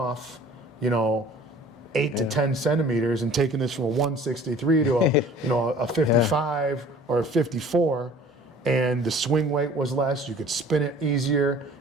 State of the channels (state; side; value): normal; both; correlation 0.48